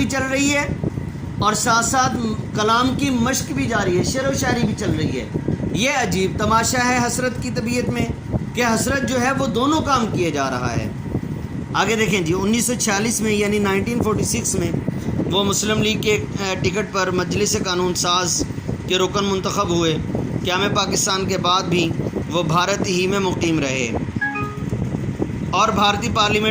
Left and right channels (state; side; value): identical; both; correlation 1.00